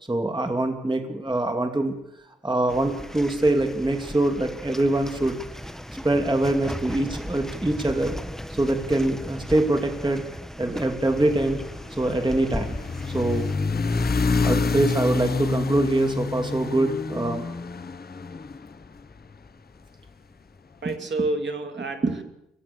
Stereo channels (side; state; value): both; normal; correlation 0.84